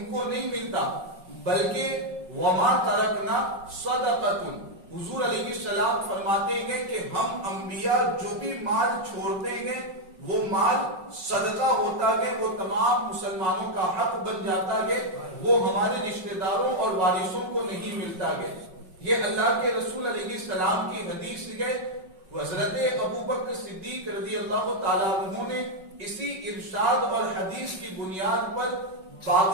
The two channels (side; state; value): left; late; 5.4 ms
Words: کو نہیں ملتا، بلکہ وما ترکنا صدقۃ، حضور علیہ السلام فرماتے ہیں کہ ہم انبیاء جو بھی مال چھوڑتے ہیں وہ مال صدقہ ہوتا ہے، وہ تمام مسلمانوں کا حق بن جاتا ہے، وہ ہمارے رشتہ داروں اور وارثوں کو نہیں ملتا ہے۔ یہ اللہ کے رسول علیہ السلام کی حدیث ہے۔ حضرت ابوبکر صدیق رضی اللہ تعالیٰ عنہ نے اسی ارشاد اور حدیث کی بنیاد پر باغ